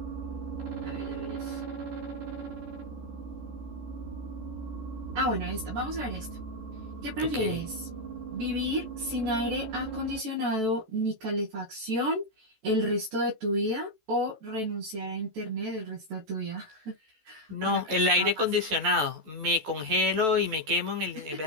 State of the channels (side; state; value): left; late; 14 ms